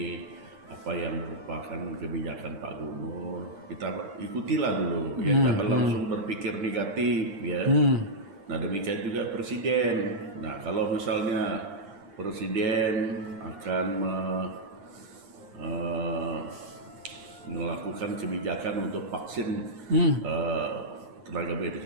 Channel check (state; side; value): late; left; 9.7 ms